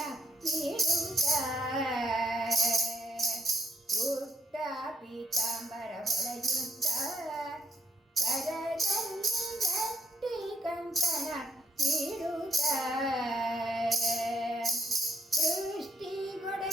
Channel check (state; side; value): normal; both; correlation 0.71